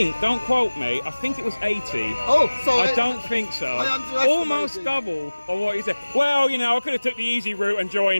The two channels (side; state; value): both; inverted; correlation -1.00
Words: Don't quote me. I think it was 80. Oh, sorry. I don't think so. Almost double of what you said. Well, I could have took the easy route and